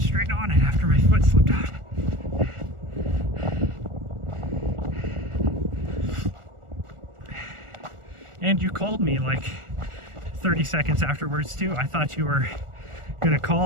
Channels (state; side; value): late; left; 1.4 ms